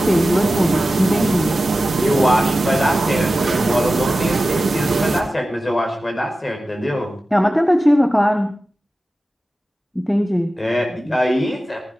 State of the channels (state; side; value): normal; both; correlation 0.94